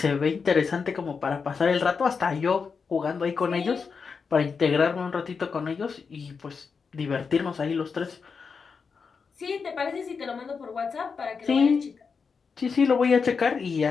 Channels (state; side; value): quieter; right; 5.4 dB